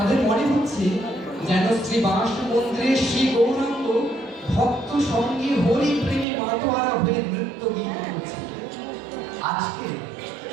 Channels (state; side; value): drops out; left; at 6.2 s